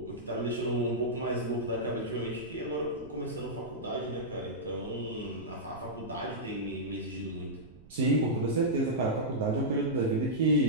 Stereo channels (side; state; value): right; noise; rumble, 21 dB below the sound